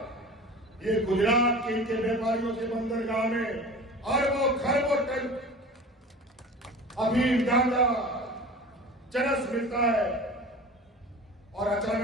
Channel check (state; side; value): normal; both; correlation 0.37